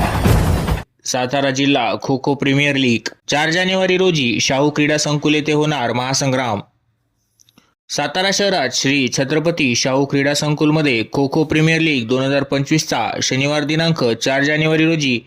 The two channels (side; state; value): both; identical; correlation 1.00